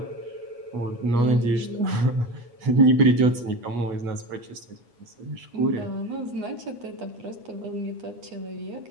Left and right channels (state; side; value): late; left; 8.3 ms